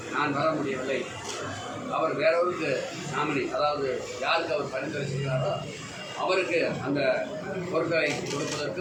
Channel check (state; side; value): identical; both; correlation 1.00